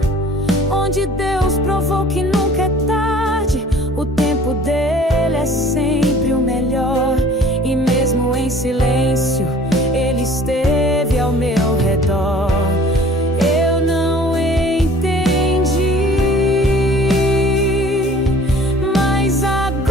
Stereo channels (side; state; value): both; normal; correlation 0.49